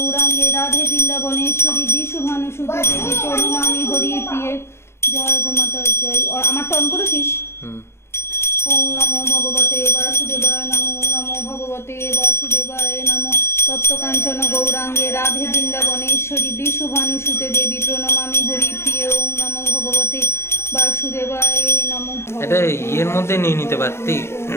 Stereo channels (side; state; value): right; late; 0.12 ms